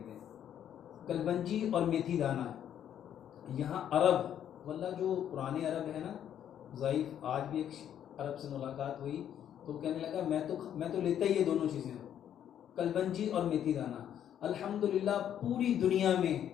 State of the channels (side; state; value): right; quieter; 10.0 dB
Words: कलवंजी और मेथी दाना। यहाँ अरब वल्ला जो पुराने अरब है ना, ज़ईफ़, आज भी एक अरब से मुलाकात हुई तो कहने लगा मैं तो लेता ही ये दोनों चीज़ें, कलवंजी और मेथी दाना। अल्हम्दुलिल्लाह पूरी दुनिया में